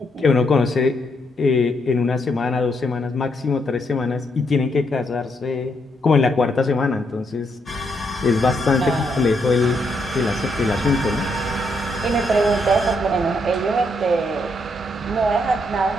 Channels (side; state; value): both; normal; correlation 0.77